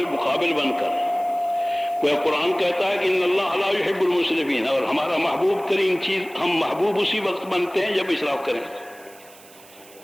بن کر۔ وہ قرآن کہتا ہے کہ ان اللہ لا يحب المسرفین، اور ہمارا محبوب ترین چیز، ہم محبوب اسی وقت بنتے ہیں جب اسراف کریں۔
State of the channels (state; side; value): noise; right; hiss, 23 dB below the sound